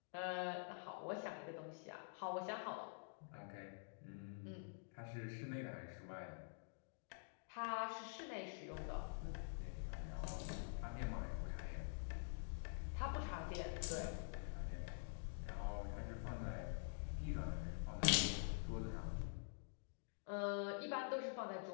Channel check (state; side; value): silent; right; digital silence